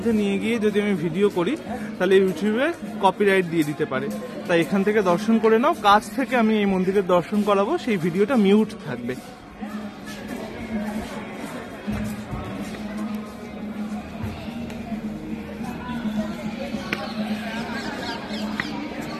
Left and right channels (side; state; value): both; identical; correlation 1.00